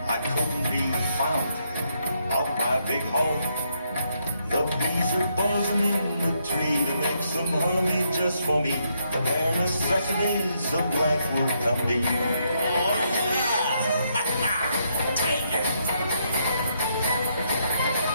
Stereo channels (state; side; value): inverted; both; correlation -0.76